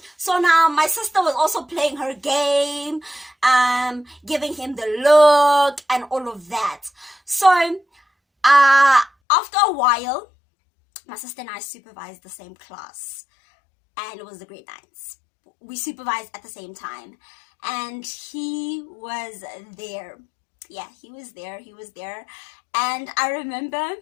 So now my sister was also playing her game, giving him the look and all of that. So after a while, my sister and I supervised the same class, and it was the grade 9s. We supervised at the same time, and he was there. Yeah, he was there. And I remember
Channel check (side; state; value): right; drops out; at 9.1 s